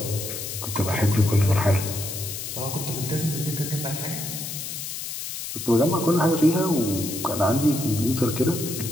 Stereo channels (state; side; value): noise; left; hiss, 7 dB below the sound